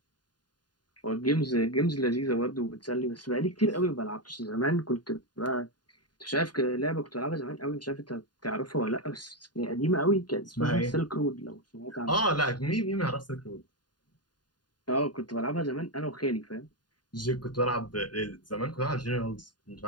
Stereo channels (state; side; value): late; right; 0.70 ms